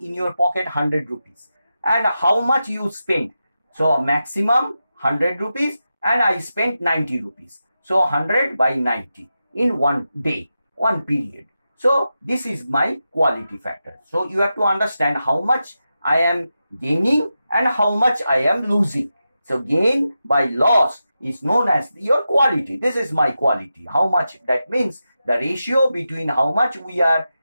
in your pocket 100 rupees. and how much you spent. So maximum 100 rupees and I spent 90 rupees. So 100 by 90 in one day, one period. So this is my quality factor. So you have to understand how much I am gaining and how much I am losing. So gain by loss is known as your quality. This is my quality. How much? That means the ratio between how much we are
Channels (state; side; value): inverted; both; correlation -0.90